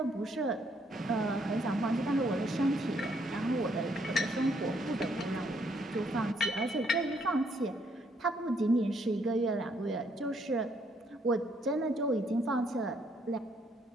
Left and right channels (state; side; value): normal; both; correlation 0.70